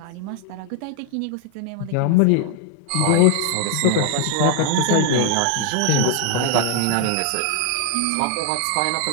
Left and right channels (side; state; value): both; different; correlation 0.00